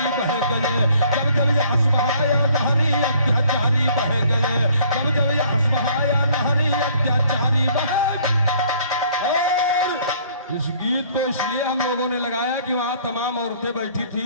बह गए, जब जब यहस बहाया नहरी अत्याचारी बह गए, जब जब यहस बहाया नहरी अत्याचारी बहे। और इस गीत को इसलिए हम लोगों ने लगाया कि वहां तमाम औरतें बैठी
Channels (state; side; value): inverted; both; correlation -0.59